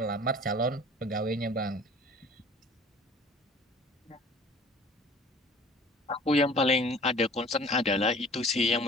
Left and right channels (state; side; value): normal; both; correlation 0.47